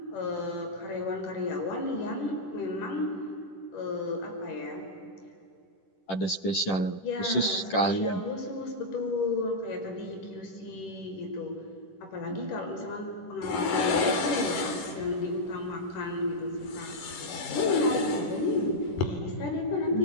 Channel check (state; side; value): late; right; 10 ms